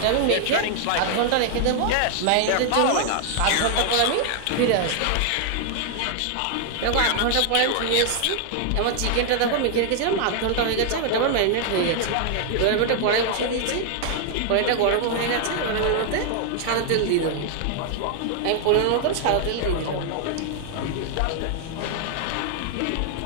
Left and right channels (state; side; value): different; both; correlation 0.00